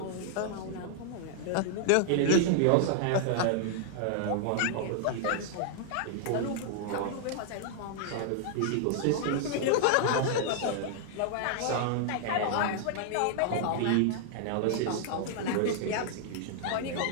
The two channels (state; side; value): different; both; correlation -0.01